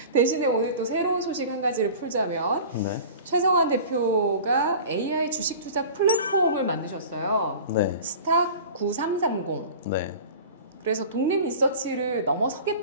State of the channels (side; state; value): both; inverted; correlation -0.39